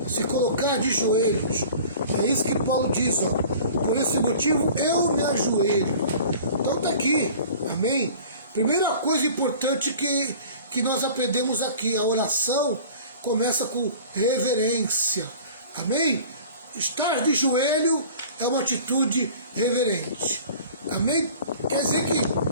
se colocar de joelhos. É isso que Paulo diz, ó. Por esse motivo eu me ajoelho. Então está aqui, amém? Primeira coisa importante que nós aprendemos aqui, a oração começa com reverência, amém? Estar de joelho é uma atitude reverente, amém? Quer dizer que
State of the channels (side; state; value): both; inverted; correlation -0.44